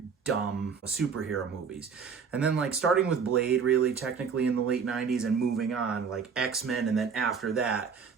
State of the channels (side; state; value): left; quieter; 6.1 dB